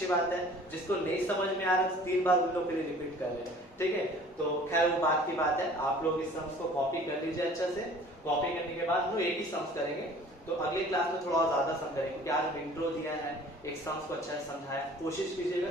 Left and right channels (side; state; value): both; normal; correlation 0.49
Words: बात है, जिसको नहीं समझ में आ रहा है 3 बार उन लोग के लिए रिपीट कर रहे हैं, ठीक है। तो खैर वो बात की बात है, आप लोग इस सम्स को कॉपी कर लीजिए अच्छे से। कॉपी करने के बाद हम लोग एक ही सम्स करेंगे, तो अगले क्लास में थोड़ा और ज्यादा सम करेंगे, क्योंकि आज हम इंट्रो दिया है, एक सम्स को अच्छा से समझाया। कोशिश